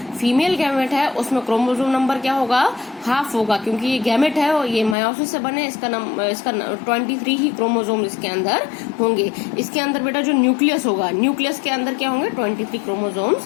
फीमेल गैमेट है उसमें क्रोमोसोम नंबर क्या होगा? हाफ होगा, क्योंकि ये गैमेट है और ये मायोसिस से बने, इसका 23 ही क्रोमोसोम इसके अंदर होंगे। इसके अंदर बेटा जो न्यूक्लियस होगा, न्यूक्लियस के अंदर क्या होंगे? 23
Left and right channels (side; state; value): right; drops out; at 5.0 s